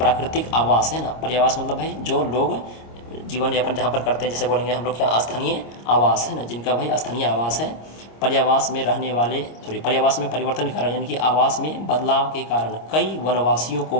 आवास है ना, पर्यावास मतलब भाई जो लोग जीवन यापन जहाँ पर करते हैं, जैसे बोलेंगे हम लोग क्या, स्थानीय आवास है ना, जिनका भाई स्थानीय आवास है, पर्यावास में परिवर्तन के कारण, यानी कि आवास में बदलाव के कारण कई वनवासियों को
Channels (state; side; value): late; right; 26 ms